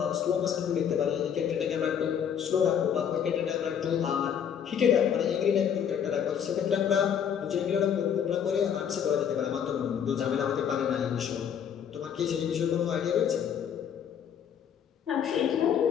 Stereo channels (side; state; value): right; quieter; 8.3 dB